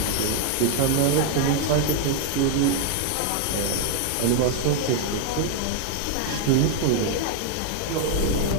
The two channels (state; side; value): different; both; correlation 0.00